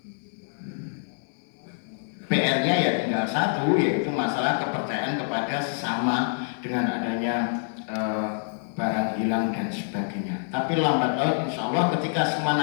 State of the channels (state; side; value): silent; right; digital silence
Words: PR-nya ya tinggal satu, yaitu masalah kepercayaan kepada sesama dengan adanya barang hilang dan sebagainya. Tapi lambat laun insya Allah ketika semua